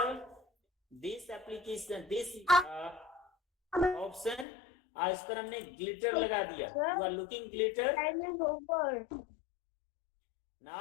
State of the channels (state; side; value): drops out; right; at 4.5 s